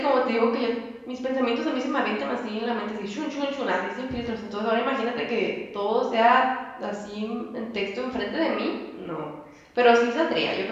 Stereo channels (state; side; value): identical; both; correlation 1.00